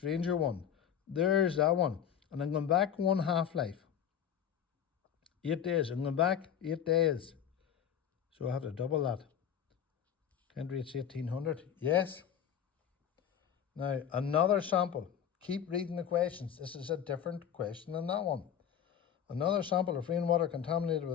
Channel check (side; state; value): right; quieter; 8.9 dB